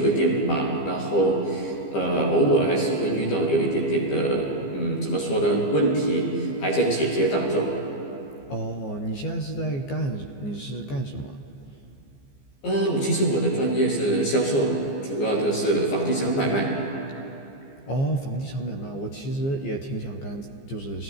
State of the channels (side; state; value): right; late; 15 ms